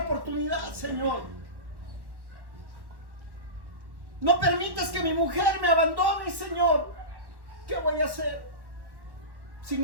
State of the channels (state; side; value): late; left; 1.1 ms